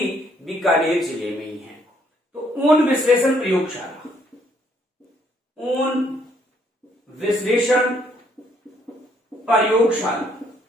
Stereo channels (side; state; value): both; normal; correlation 0.68